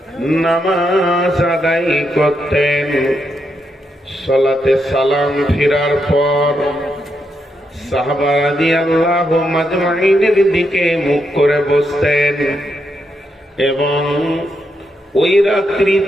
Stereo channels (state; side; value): normal; both; correlation 0.81